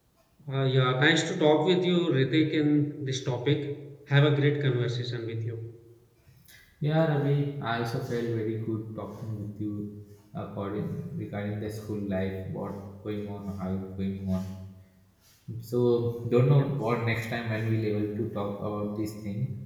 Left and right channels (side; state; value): both; identical; correlation 1.00